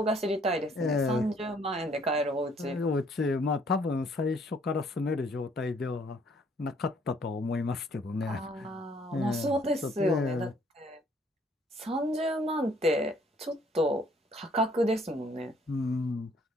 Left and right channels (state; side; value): normal; both; correlation 0.63